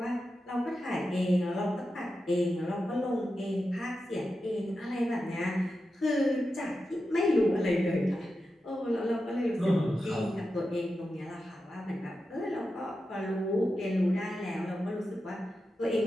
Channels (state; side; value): normal; both; correlation 0.90